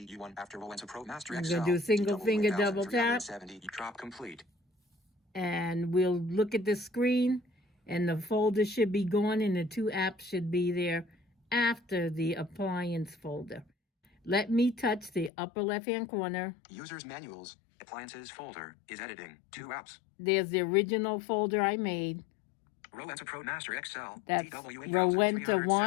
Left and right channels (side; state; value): right; drops out; at 15.3 s